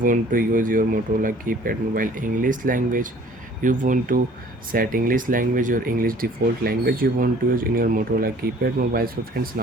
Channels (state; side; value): normal; both; correlation 0.53